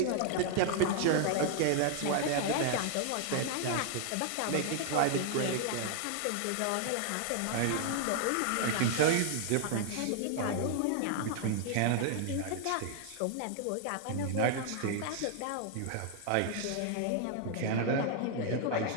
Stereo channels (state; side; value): different; both; correlation 0.00